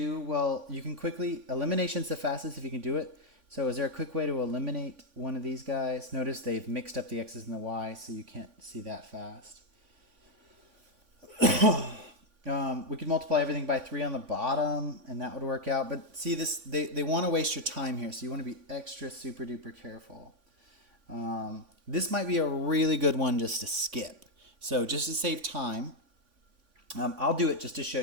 Well, you can quickly, elimination's the fastest if you can do it. So is there a quick way to eliminate one of these guys? Notice they've mixed up the x's and the y's, so you can't see that fast. We could multiply everything by 3 on the bottom, and that would work out. But see, this they want to waste your time here, so you want to be extra super duper careful. This might be a really good one just to skip. So just to save time, I'll do it just to show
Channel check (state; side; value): late; left; 3.5 ms